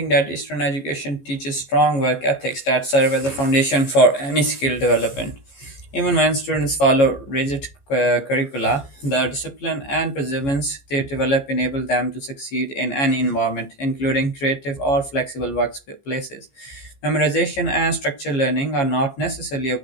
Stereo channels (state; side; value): late; right; 15 ms